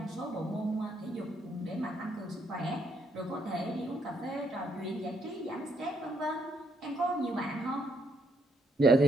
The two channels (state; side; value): normal; both; correlation 0.73